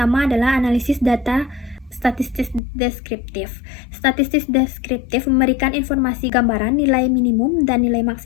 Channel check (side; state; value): right; drops out; at 2.6 s